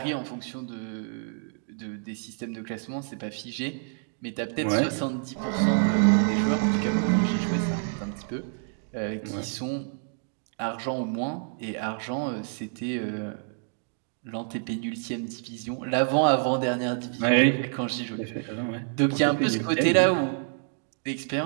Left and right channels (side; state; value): left; silent; 59 dB below the other